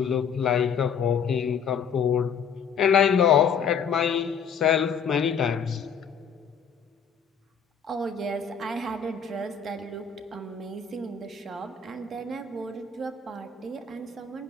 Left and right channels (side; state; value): right; quieter; 6.6 dB